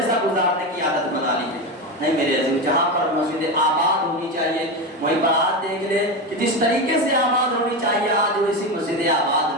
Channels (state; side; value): normal; both; correlation 0.17